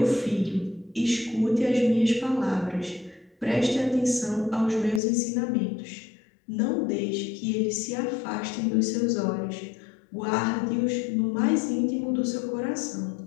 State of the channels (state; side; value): drops out; right; at 5.0 s